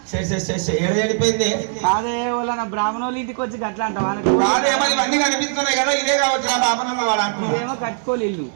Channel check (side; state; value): left; silent; digital silence